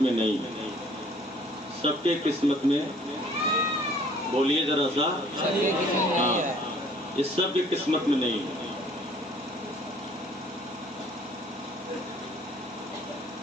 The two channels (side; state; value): both; normal; correlation 0.56